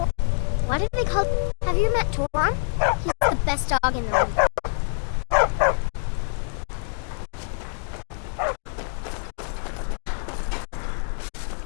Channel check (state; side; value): silent; right; 58 dB below the other